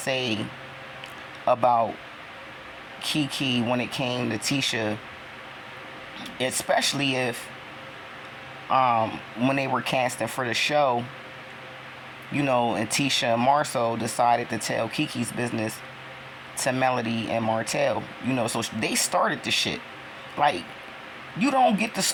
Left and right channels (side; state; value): both; identical; correlation 1.00